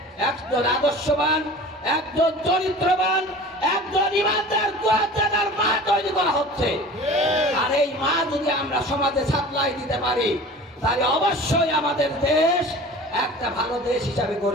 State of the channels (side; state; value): both; normal; correlation 0.40